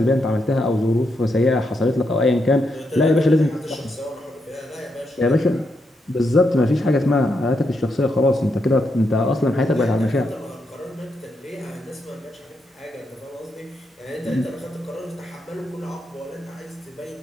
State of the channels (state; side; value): normal; both; correlation 0.81